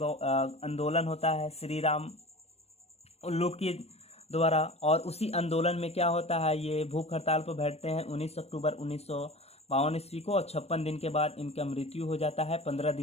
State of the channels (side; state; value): right; late; 0.30 ms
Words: आंदोलन होता है श्री राम उल्लू के द्वारा, और उसी आंदोलन में क्या होता है, ये भूख हड़ताल पर बैठते हैं 19 अक्टूबर 1952 ईस्वी को, और 56 दिन के बाद इनका मृत्यु हो जाता है 15